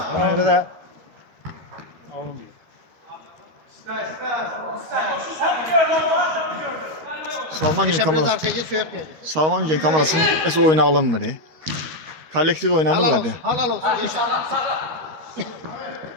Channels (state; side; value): late; left; 13 ms